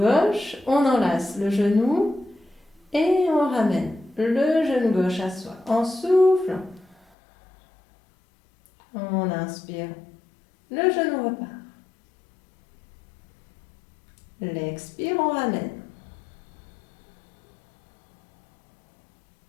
on enlace le genou et on ramène le genou gauche à soi en soufflant. On inspire, le genou repart. L'expire, on ramène.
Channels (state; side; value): drops out; right; at 7.0 s